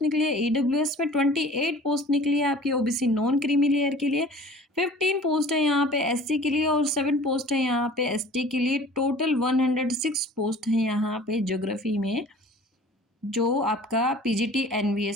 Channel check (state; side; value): normal; both; correlation 0.46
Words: निकली है, ईडब्ल्यूएस में 28 पोस्ट निकली है आपकी ओबीसी नॉन क्रीमी लेयर के लिए, 15 पोस्ट है यहाँ पे एससी के लिए और 7 पोस्ट है यहाँ पे एसटी के लिए। टोटल 106 पोस्ट है यहाँ पे ज्योग्राफी में जो आपका पीजीटी